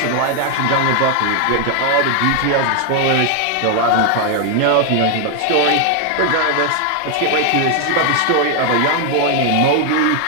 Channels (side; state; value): both; different; correlation 0.01